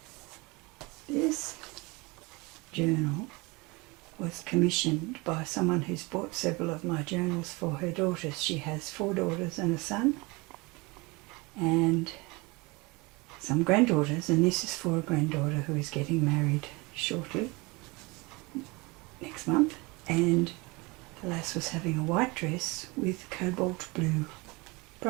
This journal was commissioned by someone who's bought several of my journals for her daughters. She has 4 daughters and a son and some granddaughters, and this is for a granddaughter who is getting married shortly, next month, and the lass was having a white dress with cobalt blue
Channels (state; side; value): quieter; left; 25.5 dB